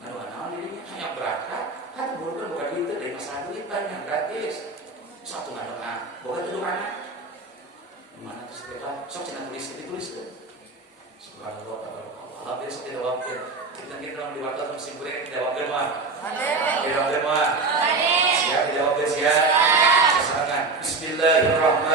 Anu anaon dirinya hanya berangkat, kan bukan itu dari masalah duit banyak gratis. Satu ngadoa, boga tuh anak. Mana terus kita sok cenah ditulis deh. Subhanallah, Allah besok tidak wakil. Kita dalam diwakil musim kuliah tidak wakil mah. Tidak wakil mah. Siap tidak wakil siap. Silakan.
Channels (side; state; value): left; quieter; 3.9 dB